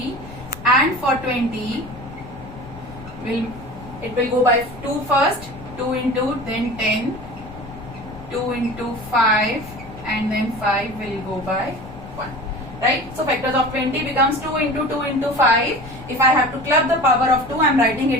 And for 20, it will go by 2 first, 2 into, then 10, 2 into 5, and then 5 will go by 1. Right? So factors of 20 becomes 2 into 2 into 5. If I have to club the power of 2, I am writing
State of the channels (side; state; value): left; noise; rumble, 16 dB below the sound